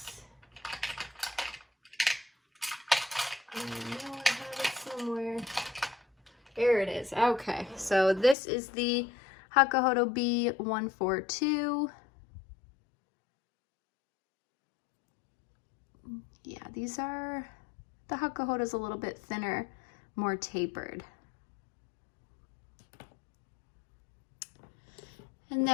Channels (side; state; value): right; drops out; at 8.3 s